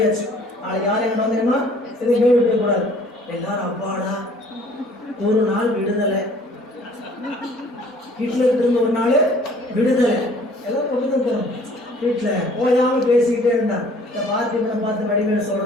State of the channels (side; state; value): both; normal; correlation 0.55